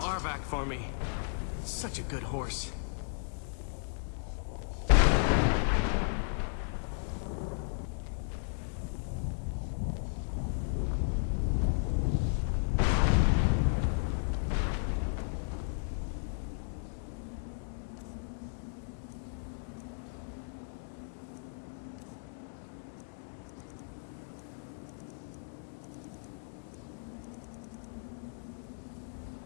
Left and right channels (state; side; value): silent; right; digital silence